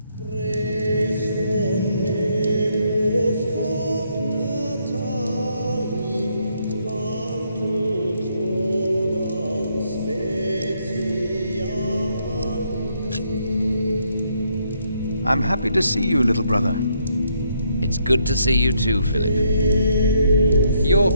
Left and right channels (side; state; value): both; inverted; correlation -0.73